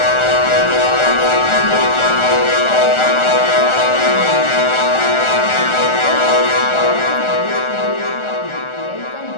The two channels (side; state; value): right; late; 1.4 ms